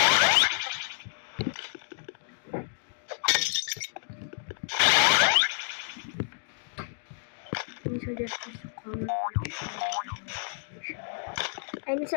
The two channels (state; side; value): silent; right; digital silence